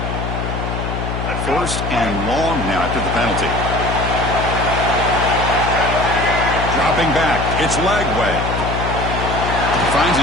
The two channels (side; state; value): left; noise; hum, 3 dB below the sound